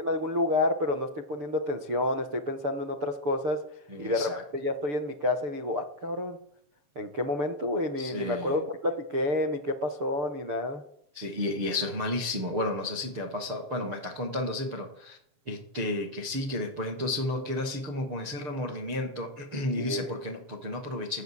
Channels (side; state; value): left; late; 6.7 ms